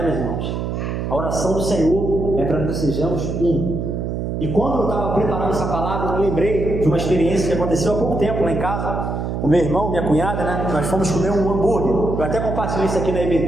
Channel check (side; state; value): right; noise; hum, 3 dB below the sound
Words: meus irmãos? A oração do Senhor é para que sejamos um. E quando eu estava preparando essa palavra, eu me lembrei de uma experiência que aconteceu há pouco tempo lá em casa. O meu irmão, minha cunhada, né? Nós fomos comer um hambúrguer. Eu até compartilhei isso aqui na